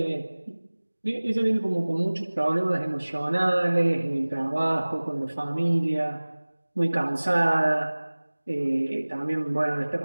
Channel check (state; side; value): inverted; both; correlation -1.00